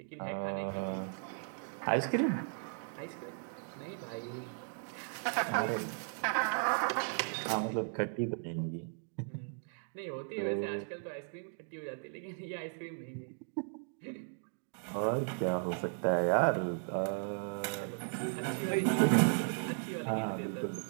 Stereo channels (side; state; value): left; silent; 54 dB below the other